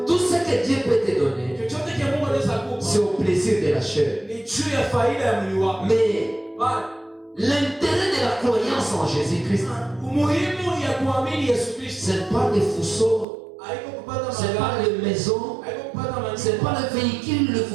Tout ce que Dieu peut te donner, c'est au plaisir de la chair. Mais l'intérêt de la croyance en Jésus-Christ, ce n'est pas les fourceaux, ce n'est pas les maisons, ce n'est pas le véhicule, le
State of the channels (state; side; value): drops out; left; at 13.2 s